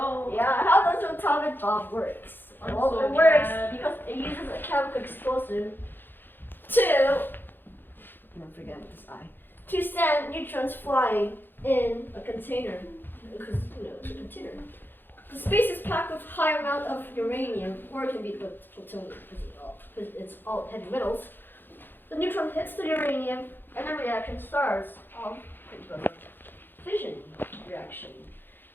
Yeah, how does an atomic bomb works? I'm Well, so it works mad. because it uses a chemical explosive to, don't forget this I, to send neutrons flying in a container, because it's a container. The space is packed with high amount of uranium, or it can be plutonium because it's all heavy metals. The neutron hits the uranium, and the reaction starts. Fission reaction.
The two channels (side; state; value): right; late; 0.097 ms